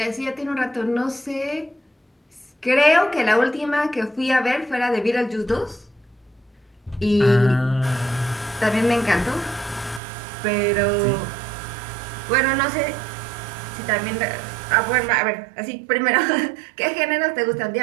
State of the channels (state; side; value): drops out; left; at 10.0 s